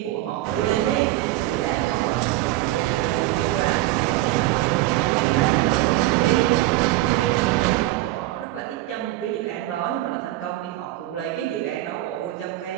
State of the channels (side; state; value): left; quieter; 16.5 dB